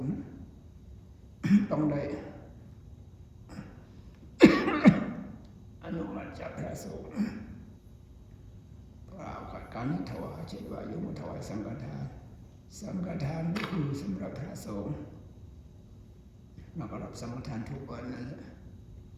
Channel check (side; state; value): both; identical; correlation 1.00